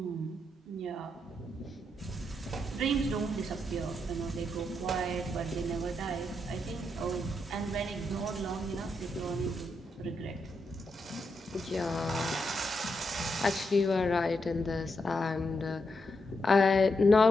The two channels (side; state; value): both; normal; correlation 0.82